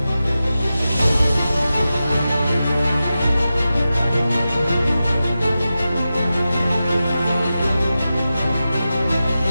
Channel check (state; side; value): inverted; both; correlation -0.92